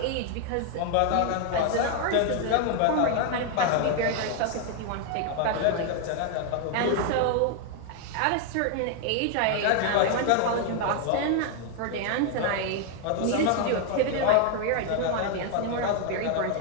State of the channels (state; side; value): different; both; correlation 0.00